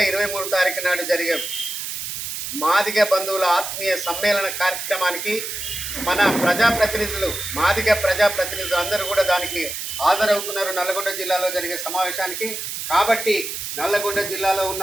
23 తారీఖు నాడు జరిగే మాదిగ బంధువుల ఆత్మీయ సమ్మేళన కార్యక్రమానికి మన ప్రజాప్రతినిధులు మాదిగ ప్రజాప్రతినిధులు అందరూ కూడా దానికి హాజరవుతున్నారు నల్లగొండ జిల్లాలో జరిగే సమావేశానికి. కాబట్టి నల్లగొండ జిల్లాలో ఉన్న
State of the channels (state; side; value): noise; right; hiss, 5 dB below the sound